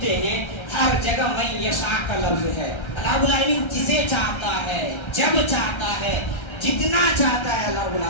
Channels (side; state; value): right; late; 1.3 ms